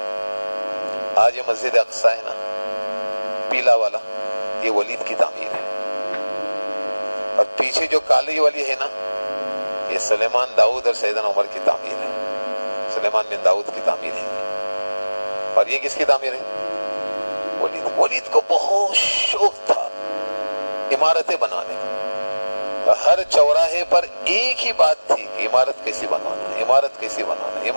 آج یہ مسجد اقصی ہے نا, پیلا والا, یہ ولید کی تعمیر ہے. اور پیچھے جو کالی والی ہے نا, یہ سلیمان داؤد اور سیدنا عمر کی تعمیر ہے. سلیمان بن داؤد کی تعمیر ہے. اور یہ کس کی تعمیر ہے؟ ولید. ولید کو بہت شوق تھا عمارتیں بنانے کا. ہر چوراہے پر ایک ہی بات تھی کہ عمارت کیسی بنوانا, عمارت کیسی بنوانا,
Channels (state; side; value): inverted; both; correlation -1.00